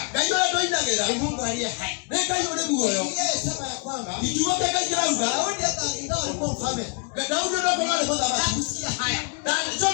Kayole tu inagera. Ni Mungu aliye hai. Ne kayole muoyo. Yeye sema ya kwamba Ikiwa kaka ikirauga. Daudi hata ingawa alikuwa mfalme. Daudi ndio kwa wale kwanza basi. Hakusikia haya. Dadi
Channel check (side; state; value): right; quieter; 35.7 dB